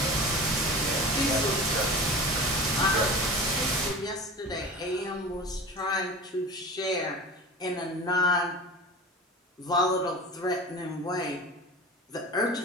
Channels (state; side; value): normal; both; correlation 0.34